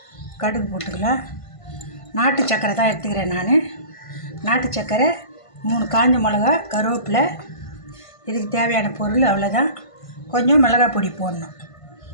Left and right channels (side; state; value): right; late; 1.5 ms